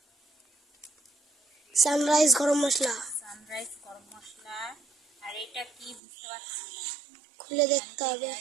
সানরাইজ গরম মশলা। আর এটা কি বুঝতে পারছি না, খুলে দেখতে হবে।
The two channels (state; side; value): drops out; left; at 6.0 s